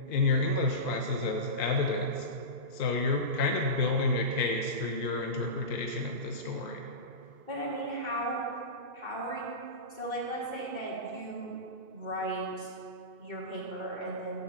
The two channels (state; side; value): late; left; 2.5 ms